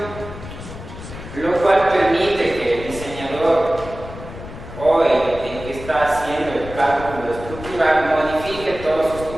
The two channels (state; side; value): noise; left; rumble, 12 dB below the sound